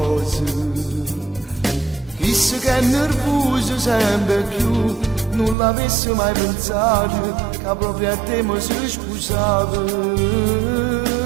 Chissà che è nervoso sempre più, non l'avessi mai pensato che proprio a te mi sei sposato.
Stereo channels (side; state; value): left; drops out; at 5.6 s